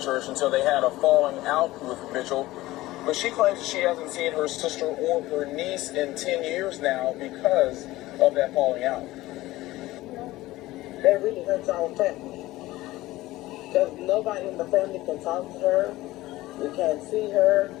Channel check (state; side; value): quieter; right; 17.6 dB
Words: church until they had a falling out with Mitchell. But she claims she hasn't seen her sister or her niece in 10 years now because of that falling out. That really hurts our family. Because nobody in the family can talk to her. We can't see her